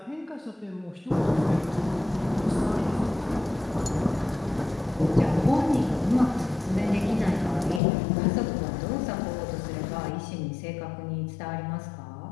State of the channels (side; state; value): right; drops out; at 7.8 s